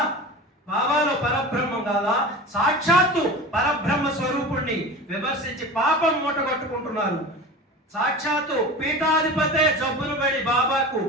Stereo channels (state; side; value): normal; both; correlation 0.33